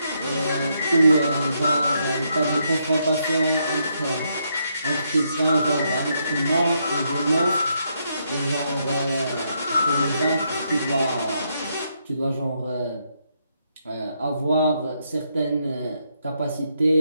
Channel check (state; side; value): inverted; both; correlation -0.77